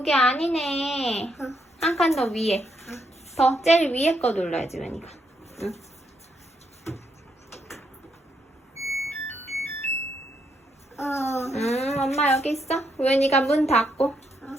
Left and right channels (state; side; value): normal; both; correlation 0.77